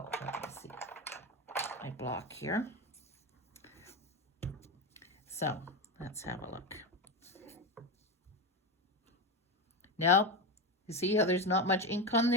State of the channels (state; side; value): normal; both; correlation 0.16